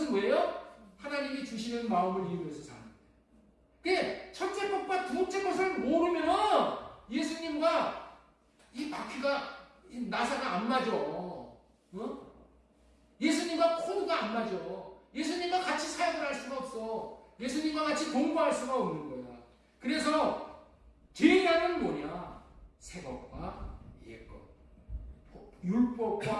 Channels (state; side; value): identical; both; correlation 1.00